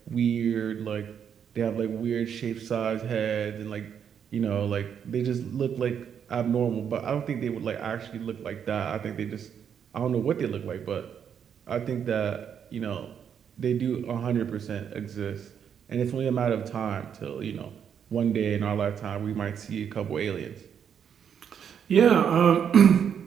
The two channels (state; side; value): quieter; left; 8.0 dB